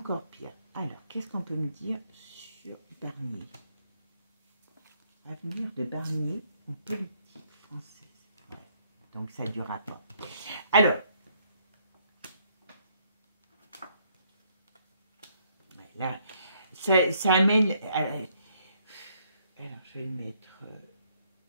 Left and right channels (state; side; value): inverted; both; correlation -0.69